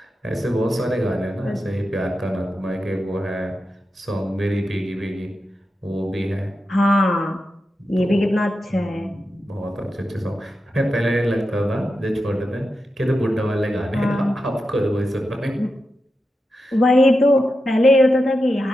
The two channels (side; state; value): both; normal; correlation 0.89